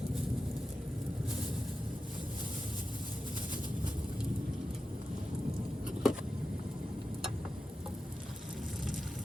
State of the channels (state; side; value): normal; both; correlation 0.91